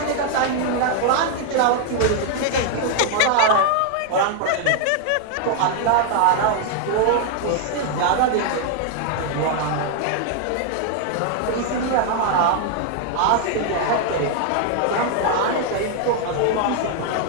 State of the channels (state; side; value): different; both; correlation 0.00